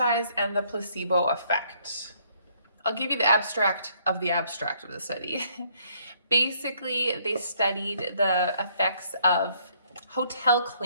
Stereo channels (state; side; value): inverted; both; correlation -0.66